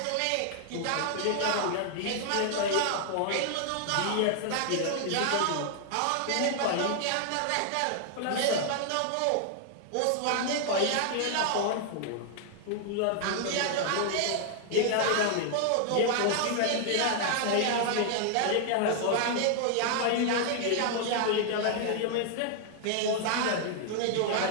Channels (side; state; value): both; different; correlation 0.00